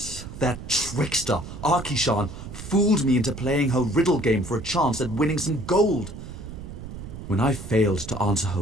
that trickster, Arkishan, fooled me into playing her riddle game for a chance at winning some gold. When I failed to answer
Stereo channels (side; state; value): right; noise; rumble, 11 dB below the sound